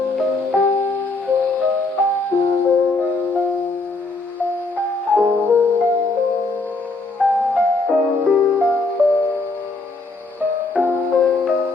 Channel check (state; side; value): quieter; right; 3.4 dB